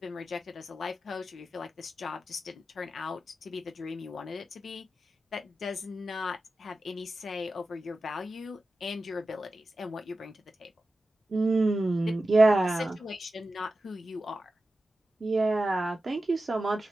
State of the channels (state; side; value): normal; both; correlation 0.93